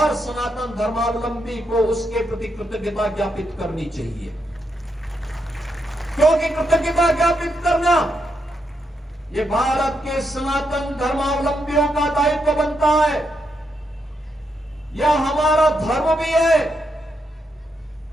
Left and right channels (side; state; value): both; normal; correlation 0.81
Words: सनातन धर्मावलंबी को उसके प्रति कृतज्ञता ज्ञापित करनी चाहिए। क्योंकि कृतज्ञता ज्ञापित करना ये भारत के सनातन धर्मावलंबियों का दायित्व बनता है, यह हमारा धर्म भी है,